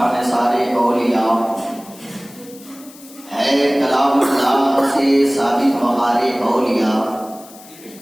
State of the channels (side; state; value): left; noise; hiss, 21 dB below the sound